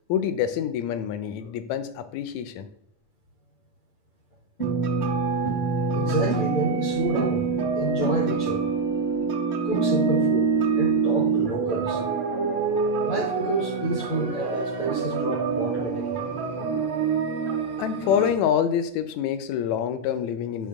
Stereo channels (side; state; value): right; late; 8.6 ms